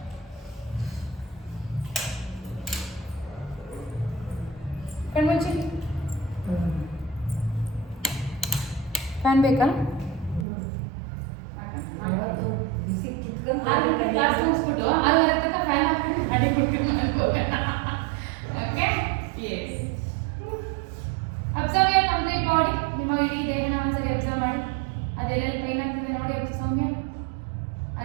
ಕಣ್ಮುಚ್ಚಿ ಫ್ಯಾನ್ ಬೇಕಾ ಕ್ಲಾಸ್ ಮುಗಿಸ್ಬಿಟ್ಟು 6:30 ತನಕ ಫ್ಯಾನ್ ಹಾಕ್ಬಿಟ್ಟು ಮಾಡಿ ಕೊಡ್ತೀನಿ okay yes observe your complete body ನಿಮ್ಮ ಇಡೀ ದೇಹನ ಒಂದ್ಸರಿ ಅಬ್ಸರ್ವ್ ಮಾಡಿ ಅದೆಲ್ಲೆಲ್ಲಿ ಪೈನ್ ಆಗ್ತಿದೆ ನೋಡಿ ಸೌಮ್ಯ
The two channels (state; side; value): drops out; left; at 10.5 s